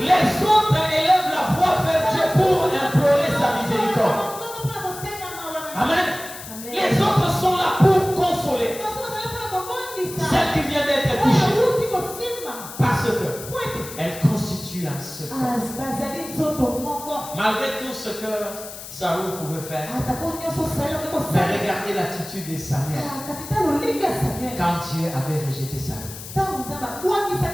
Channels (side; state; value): left; noise; hiss, 13 dB below the sound